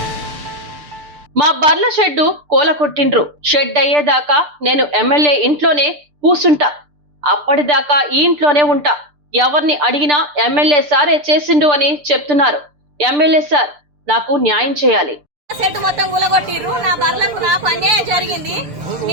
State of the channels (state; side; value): late; left; 6.8 ms